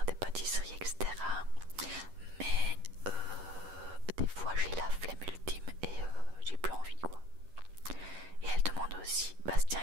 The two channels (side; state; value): left; late; 11 ms